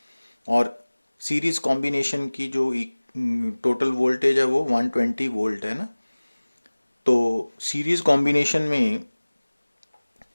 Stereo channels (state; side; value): inverted; both; correlation -1.00